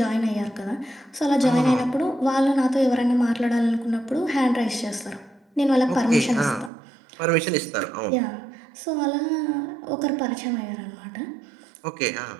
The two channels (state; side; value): drops out; left; at 6.7 s